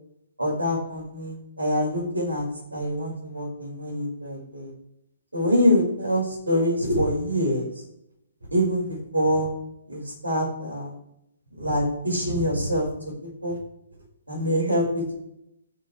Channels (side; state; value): both; inverted; correlation -0.60